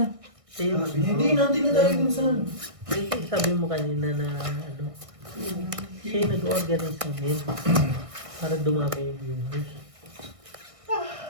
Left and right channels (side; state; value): left; late; 1.6 ms